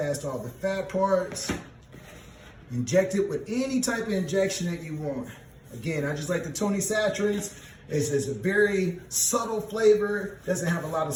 all the fat parts, inject it with any type of injection that you want. Again, I just like the Tony Saturates. It's a very subtle flavor, doesn't have a lot of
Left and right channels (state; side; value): identical; both; correlation 1.00